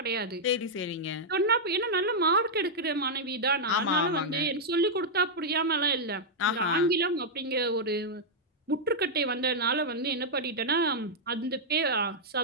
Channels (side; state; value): both; normal; correlation -0.05